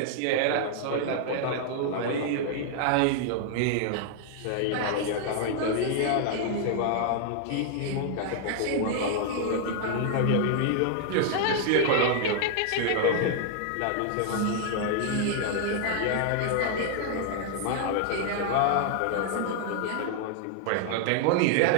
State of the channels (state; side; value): different; both; correlation 0.00